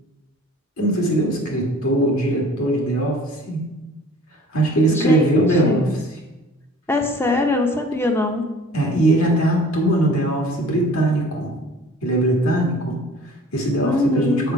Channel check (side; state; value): both; normal; correlation 0.48